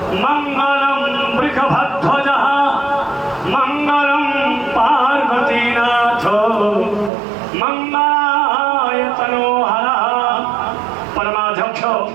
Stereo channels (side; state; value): left; drops out; at 7.1 s